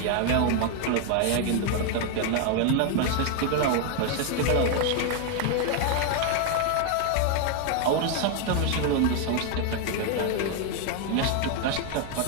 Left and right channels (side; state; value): both; different; correlation 0.01